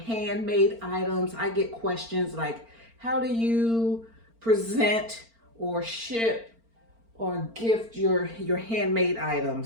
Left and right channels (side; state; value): left; late; 4.4 ms